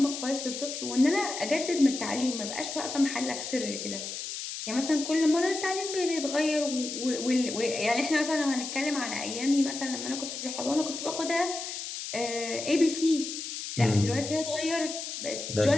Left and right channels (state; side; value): noise; left; hiss, 7 dB below the sound